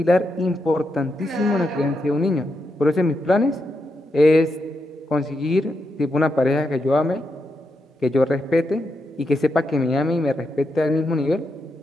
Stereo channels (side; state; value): both; normal; correlation 0.84